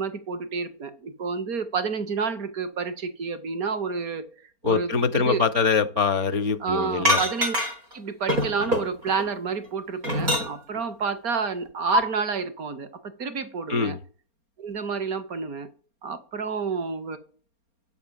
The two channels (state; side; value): late; left; 4.3 ms